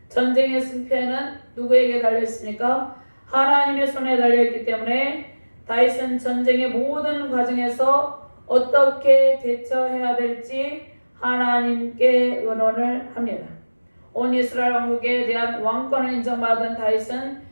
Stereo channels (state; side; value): inverted; both; correlation -1.00